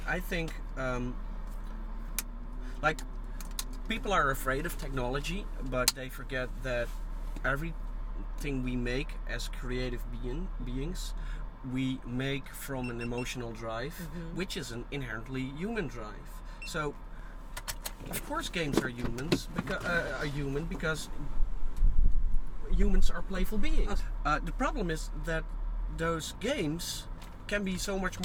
I think. Like, people are afraid of technology, but they forget that everything we make as creative beings, we make from an emotional drive, which is an inherently human drive. So, of course, games are human because humans are playful beings. The problem is that those games can be so much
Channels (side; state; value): both; identical; correlation 1.00